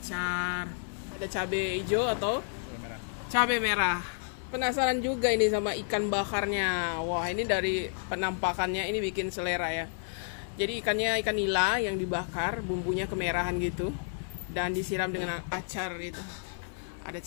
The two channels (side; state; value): right; silent; 57 dB below the other